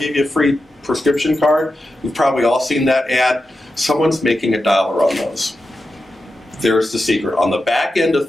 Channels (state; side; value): normal; both; correlation 0.90